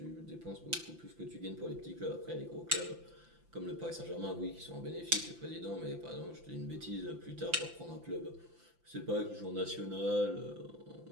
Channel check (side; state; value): left; late; 5.9 ms